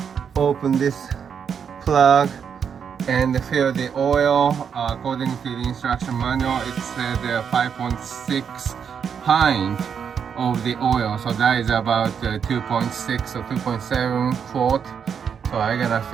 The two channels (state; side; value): quieter; left; 7.2 dB